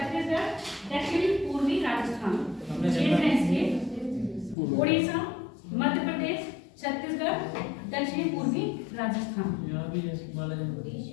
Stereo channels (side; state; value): right; drops out; at 4.5 s